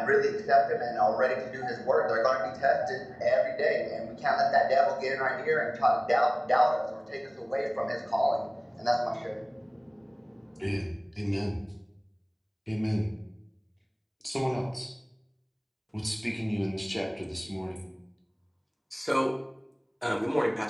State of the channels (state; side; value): identical; both; correlation 1.00